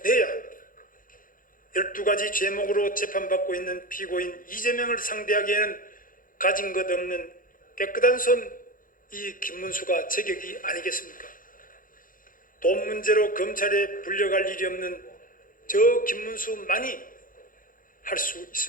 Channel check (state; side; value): late; right; 0.40 ms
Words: 합니다. 12가지 죄목으로 재판받고 있는 피고인 이재명을 상대하기에는 가진 것 없는 깨끗한 손 이 김문수가 제격이 아니겠습니까? 돈 문제로 검찰에 불려갈 일이 없는 저 김문수만이 할 수